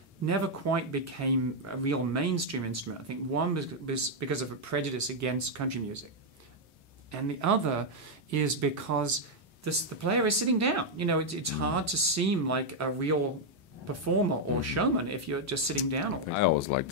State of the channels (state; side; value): normal; both; correlation -0.01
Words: never quite became a real mainstream instrument. I think one was because of a prejudice against country music, and the other is because the player is sitting down. You know, it's hard to seem like a real performer or showman if you're just sitting down all the time. I always like